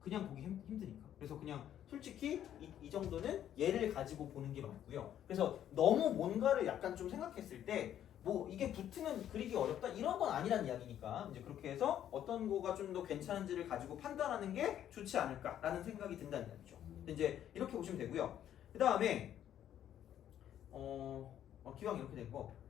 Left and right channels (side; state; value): right; quieter; 10.7 dB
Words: 그냥 보기 힘드니까. 그래서 그냥 솔직히 이 정도는 얘를 가지고 보는 게 맞고요. 그래서 너무 뭔가를 약간 좀 생각했을 때 뭐 이게 붙으면 그리기 어렵다 이런 건 아니란 이야기니까 이제 그렇게 해서 어떤 거가 좀 더 괜찮은지를 가지고 판단하는 게 좋지 않을까라는 생각이 든다는 이야기죠. 이제 이렇게 보시면 되고요. 그 다음에 기왕 이렇게 된 거